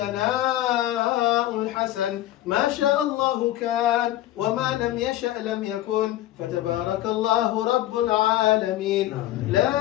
الحسن ما شاء الله كان وما لم يشأ لم يكن فتبارك الله رب العالمين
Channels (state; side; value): quieter; right; 14.4 dB